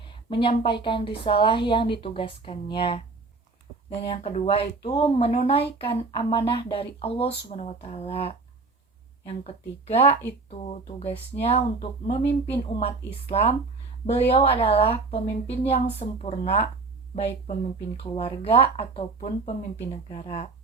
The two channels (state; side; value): quieter; left; 4.0 dB